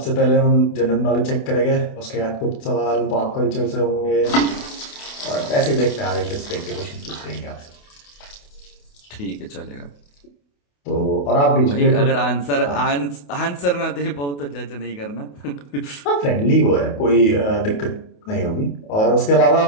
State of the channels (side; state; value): right; late; 28 ms